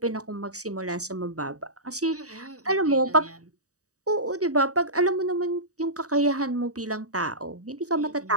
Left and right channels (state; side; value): late; left; 0.66 ms